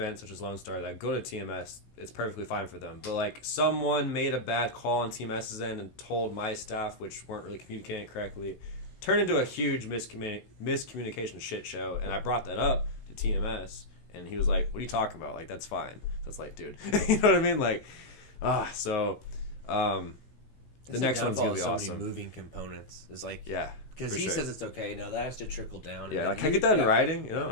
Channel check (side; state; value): right; late; 16 ms